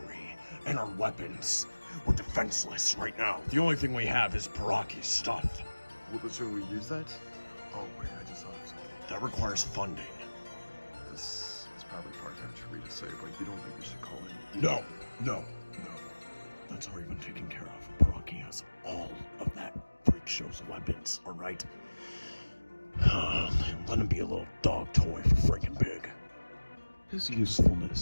and our weapons. We're defenseless right now. The only thing we have is Baraki's stuff. Well, but should we use that? Oh, wait, I just thought of something. That requires funding. This is probably far-fetched for me to say, but you don't think we should call in? No. That's already been taken care of. Baraki has all of that freak show's weapons, alright? Let him be a little dog toy for freaking big. His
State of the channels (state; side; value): inverted; both; correlation -1.00